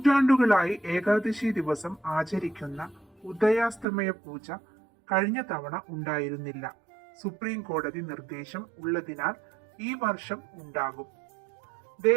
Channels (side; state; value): left; drops out; at 3.9 s